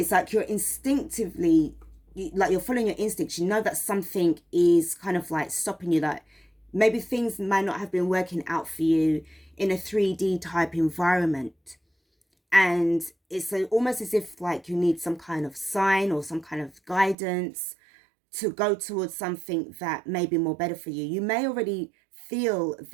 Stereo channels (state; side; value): drops out; left; at 17.2 s